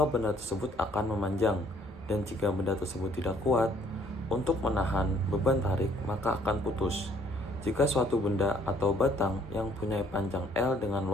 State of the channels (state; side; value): normal; both; correlation 0.62